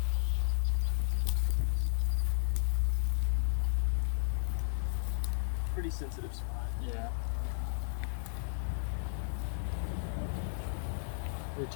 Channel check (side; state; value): right; silent; digital silence